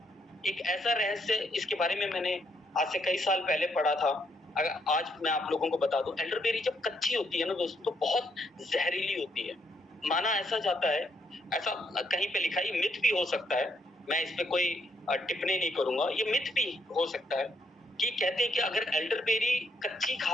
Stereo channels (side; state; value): both; normal; correlation 0.75